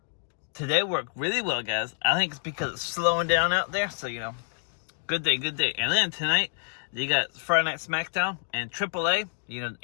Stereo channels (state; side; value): silent; right; digital silence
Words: today worked really well, guys. I think it's because it's slowing down out there, so you know, good day. And then tonight, you got Friday Night SmackDown and AAA. You